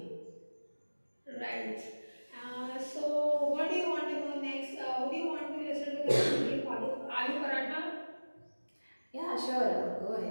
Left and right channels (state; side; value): inverted; both; correlation -1.00